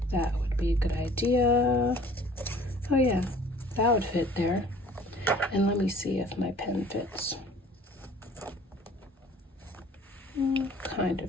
That would be a good idea. Oh yeah, that would fit there. And let me see if my pen fits. Kind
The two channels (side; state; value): both; normal; correlation 0.50